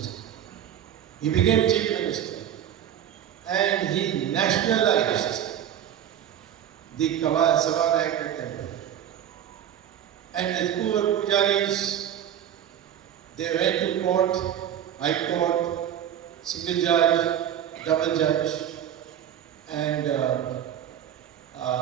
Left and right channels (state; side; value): quieter; left; 10.2 dB